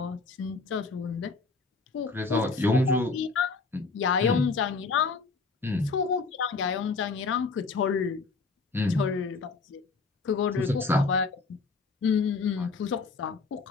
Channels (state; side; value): quieter; right; 4.2 dB